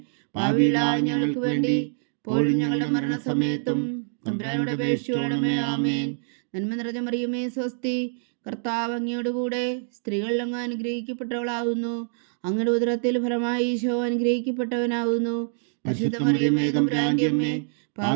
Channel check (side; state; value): left; silent; digital silence